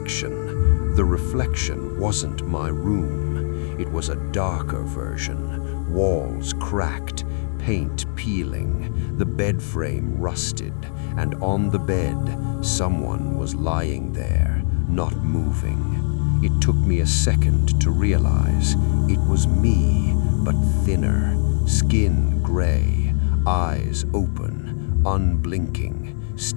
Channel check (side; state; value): right; silent; 65 dB below the other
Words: wasn't my room. It was a darker version, walls cracked, paint peeling, the bed frame rusted, and on the bed, someone was lying there, not moving. It took me a second to realize it was me, but thinner, skin gray, eyes open, unblinking,